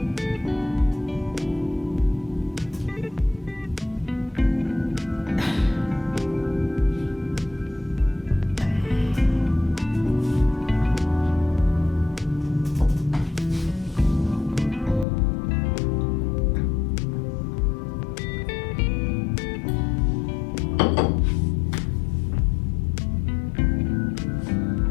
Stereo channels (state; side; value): drops out; right; at 15.1 s